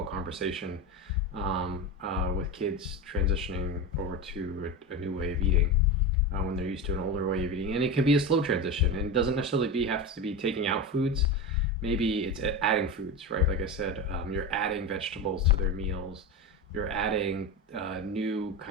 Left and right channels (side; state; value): both; normal; correlation 0.21